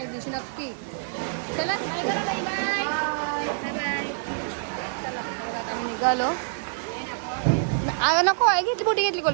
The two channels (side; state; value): left; silent; digital silence